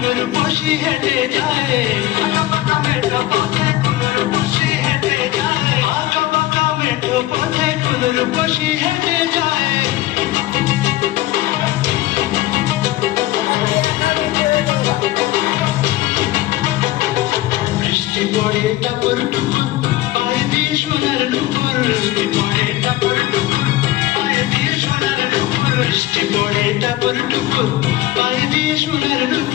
বসি হেঁটে যায় আঁকা পাকা মেঠো পথে কোনের বসি হেঁটে যায় আঁকা পাকা মেঠো পথে কোনের বসি হেঁটে যায় বৃষ্টি পড়ে টাপুর টুপুর পায়ে দিয়ে সোনার নুপুর বৃষ্টি পড়ে টাপুর টুপুর পায়ে দিয়ে সোনার নুপুর বৃষ্টি পড়ে টাপুর টুপুর পায়ে দিয়ে সোনার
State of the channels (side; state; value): right; quieter; 16.4 dB